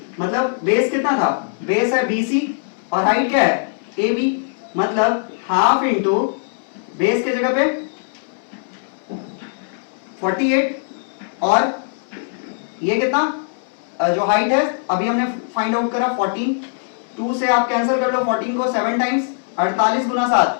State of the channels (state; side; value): silent; right; 64 dB below the other